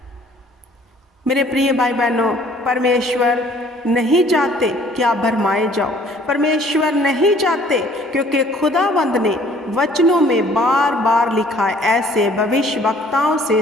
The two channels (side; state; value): both; normal; correlation 0.57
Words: मेरे प्रिय भाई बहनों, परमेश्वर नहीं चाहते कि आप भरमाए जाओ। परमेश्वर नहीं चाहते, क्योंकि खुदावंद ने वचनों में बार बार लिखा है, ऐसे भविष्यवक्ताओं